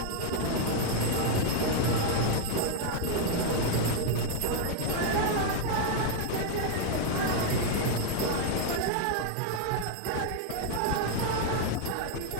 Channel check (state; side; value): different; both; correlation 0.00